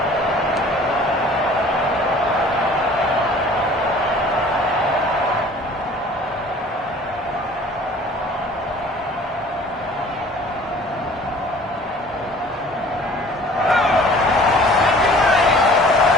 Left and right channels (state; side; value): normal; both; correlation 0.49